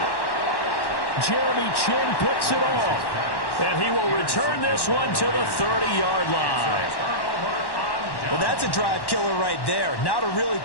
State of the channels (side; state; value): right; late; 1.1 ms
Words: Jeremy Chin picks it off, and he will return this one to the 30-yard line. Well, that's a drive killer right there. Not a really